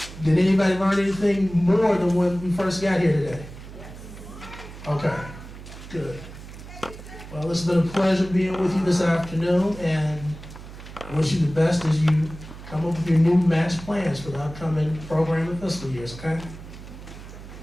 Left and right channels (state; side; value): noise; right; hum, 15 dB below the sound